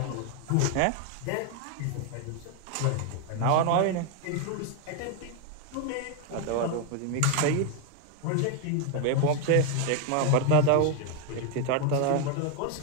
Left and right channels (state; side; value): different; both; correlation 0.01